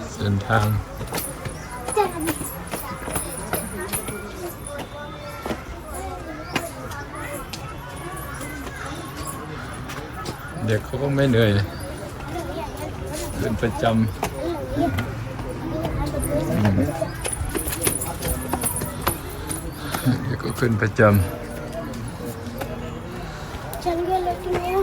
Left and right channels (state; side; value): identical; both; correlation 1.00